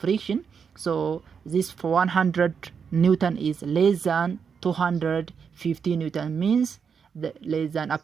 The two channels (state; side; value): quieter; left; 6.5 dB